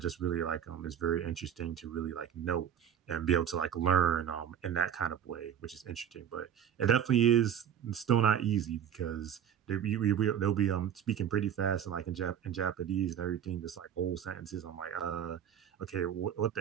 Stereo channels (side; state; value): left; quieter; 9.2 dB